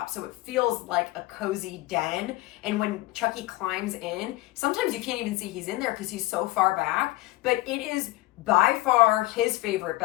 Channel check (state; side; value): quieter; right; 18.7 dB